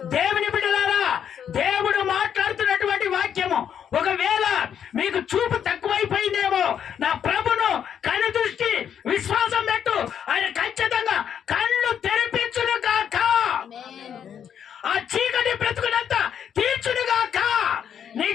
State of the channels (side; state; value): right; quieter; 8.6 dB